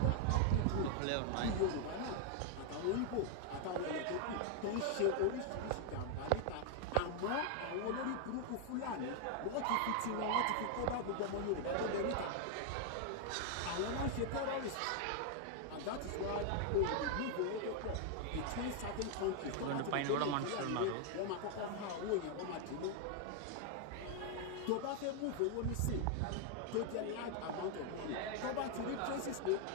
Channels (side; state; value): both; different; correlation 0.00